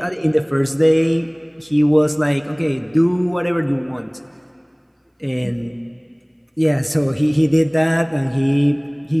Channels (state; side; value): identical; both; correlation 1.00